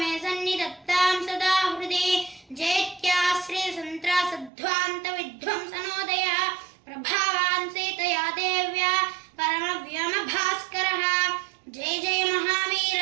मे सन्निधत्तां सदा हृदि। जैत्याश्रितसन्त्रासध्वान्तविध्वंसनोदयः प्रभावान् सीतया देव्या परमव्योमभास्करः। जय जय महावीर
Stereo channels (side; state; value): left; drops out; at 4.5 s